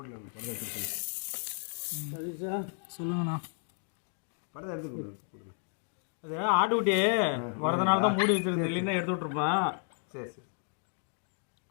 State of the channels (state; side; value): silent; right; 56 dB below the other